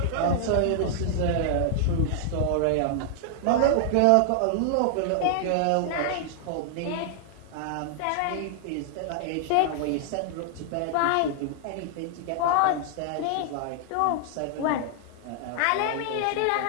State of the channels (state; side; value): different; both; correlation -0.01